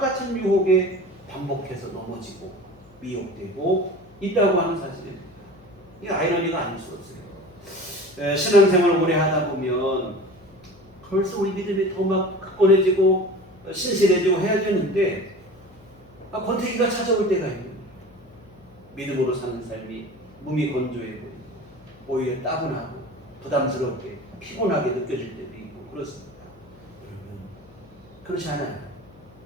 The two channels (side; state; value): left; noise; hum, 26 dB below the sound